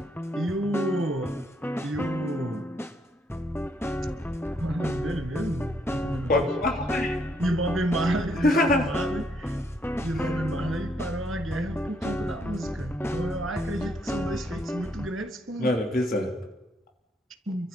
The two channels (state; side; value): normal; both; correlation 0.72